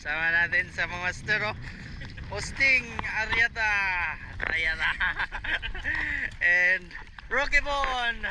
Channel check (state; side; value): identical; both; correlation 1.00